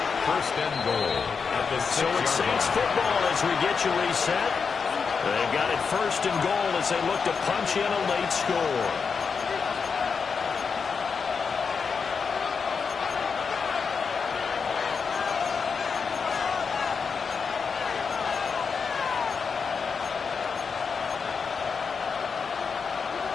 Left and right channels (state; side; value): quieter; right; 5.6 dB